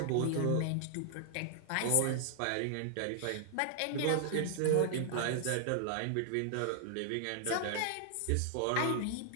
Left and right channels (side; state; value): both; different; correlation -0.01